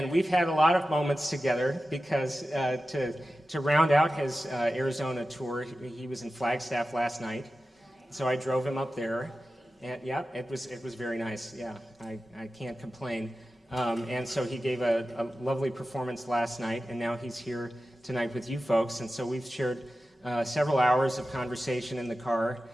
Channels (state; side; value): normal; both; correlation 0.94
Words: we've had a lot of moments together because to round out his Arizona tour, he was in Flagstaff last night. So I drove him up there, and yeah, it was very nice. Yeah, I can't complain. And so he gave a lovely performance last night, and now he's here tonight with you folks. And so we've shared several hours of conversation in the car,